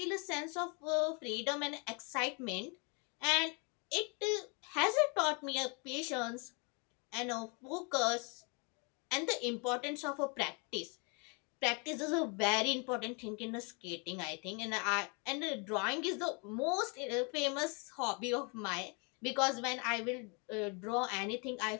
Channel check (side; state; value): right; quieter; 33.7 dB